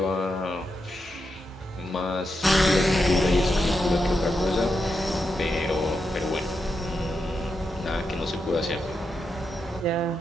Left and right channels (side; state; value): both; normal; correlation 0.85